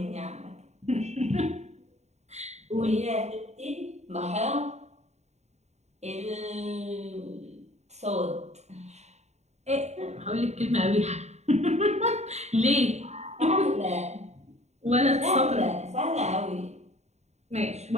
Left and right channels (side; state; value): left; late; 0.32 ms